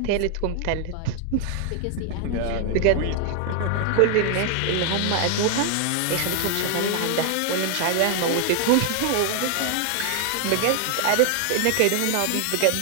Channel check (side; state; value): both; different; correlation 0.00